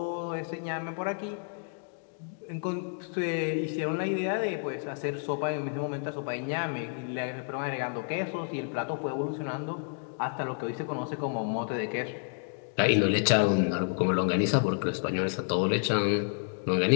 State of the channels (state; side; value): silent; right; 58 dB below the other